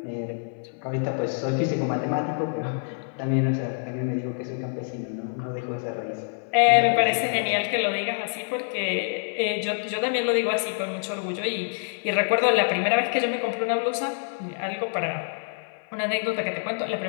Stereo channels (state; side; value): silent; right; 60 dB below the other